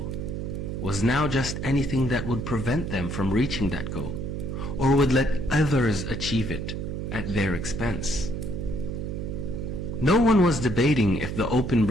was now just anything that would prevent them from reaching that goal, or would let others achieve it at their expense. No one was debating if the open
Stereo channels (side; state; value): right; noise; hum, 4 dB below the sound